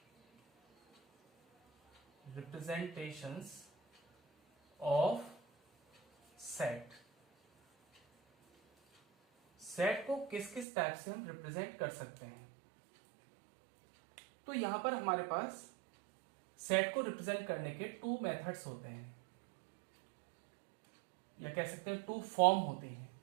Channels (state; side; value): drops out; left; at 10.7 s